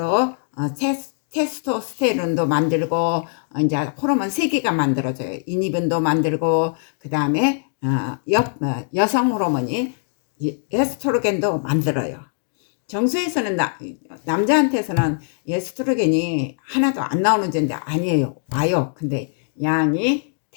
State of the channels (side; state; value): right; silent; 62 dB below the other